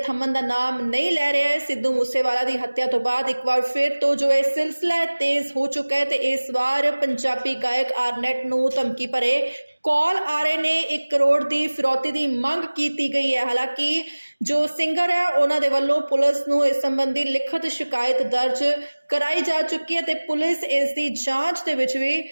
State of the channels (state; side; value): inverted; both; correlation -1.00